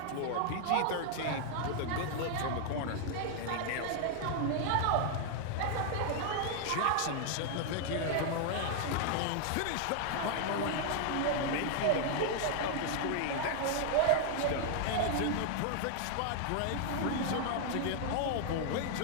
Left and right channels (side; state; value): both; different; correlation 0.00